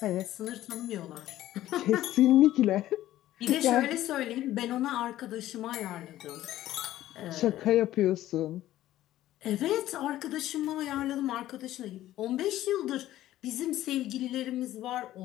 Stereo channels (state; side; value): quieter; right; 14.1 dB